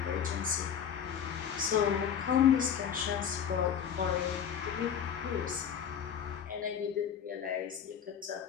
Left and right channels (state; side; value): quieter; right; 8.3 dB